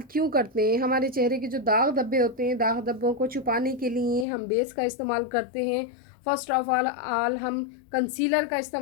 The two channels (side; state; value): right; drops out; at 4.2 s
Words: क्यों करते हैं? हमारे चेहरे के जो दाग धब्बे होते हैं, दाग धब्बों को छुपाने के लिए हम बेस का इस्तेमाल करते हैं। फर्स्ट ऑफ ऑल हम कंसीलर का